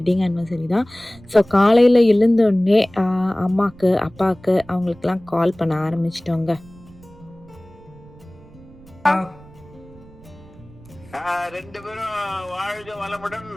ஆனிவர்சரி தான். ஸோ காலையில் எழுந்தோடனே அம்மாவுக்கு அப்பாவுக்கு அவங்களுக்கெல்லாம் கால் பண்ண ஆரம்பிச்சிட்டோங்க. ரெண்டு பேரும் வாழ்க வளமுடன்,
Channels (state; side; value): noise; right; rumble, 23 dB below the sound